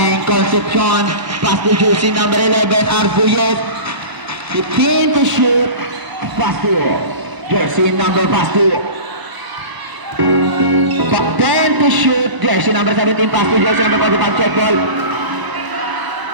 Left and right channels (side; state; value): left; late; 1.0 ms